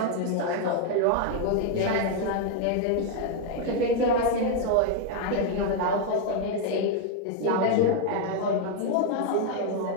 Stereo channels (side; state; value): both; different; correlation 0.01